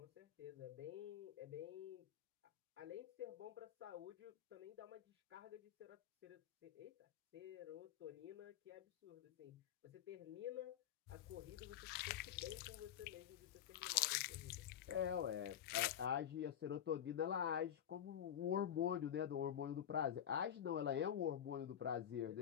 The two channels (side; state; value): right; quieter; 10.0 dB